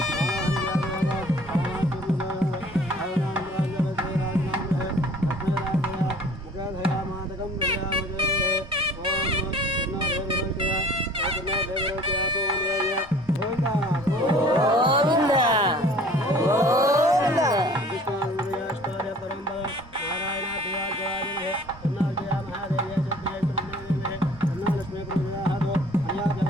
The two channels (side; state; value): both; normal; correlation 0.50